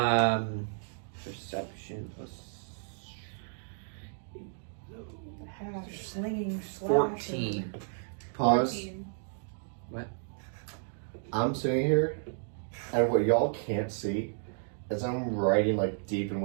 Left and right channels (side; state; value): left; silent; digital silence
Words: Perception plus Slinging, 14. Pause. 14. I'm sitting here, and what y'all can't see is I'm writing like deep in